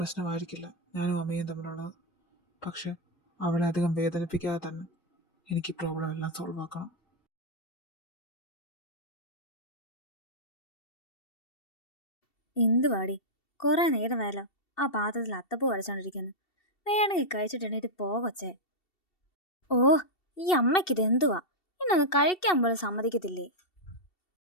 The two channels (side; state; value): right; late; 2.7 ms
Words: പ്രശ്നമായിരിക്കില്ല ഞാനും അമ്മയും തമ്മിലുള്ളത്. പക്ഷെ അവളെ അധികം വേദനിപ്പിക്കാതെ തന്നെ എനിക്ക് പ്രോബ്ലം എല്ലാം സോൾവ് ആക്കണം. എന്തുവാടി, കുറെ നേരമായല്ലോ ആ പാത്രത്തിൽ അത്തപ്പൂ വരച്ചോണ്ടിരിക്കുന്നു. വേണമെങ്കിൽ കഴിച്ചിട്ട് എണീറ്റ് പോകൊച്ചേ. ഓ, ഈ അമ്മയ്ക്കിത് എന്തുവാ, ഇന്നൊന്ന് കഴിക്കാൻ പോലും സമ്മതിക്കത്തില്ലേ?